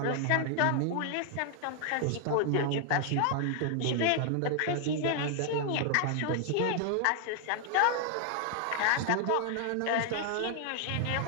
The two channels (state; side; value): different; both; correlation 0.00